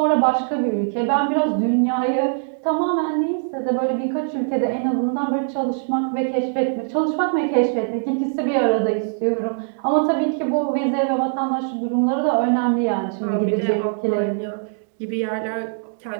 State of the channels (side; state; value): left; silent; digital silence